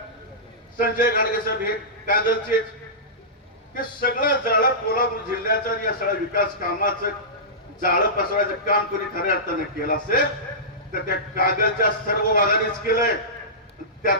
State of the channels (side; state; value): both; normal; correlation -0.18